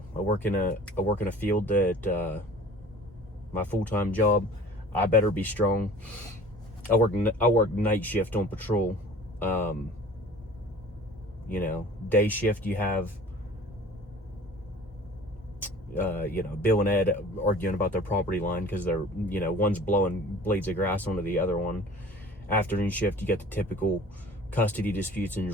I work in a field that, my full-time job, I better be strong. I work night shift on patrol. You know, day shift you have, you know, Bill and Ed arguing about their property line because they're, you know, one's blowing blades of grass onto the other one. Afternoon shift, you get the typical custody disputes and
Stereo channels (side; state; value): both; normal; correlation 0.46